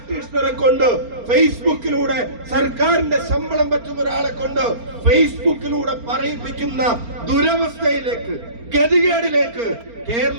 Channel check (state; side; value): late; left; 4.3 ms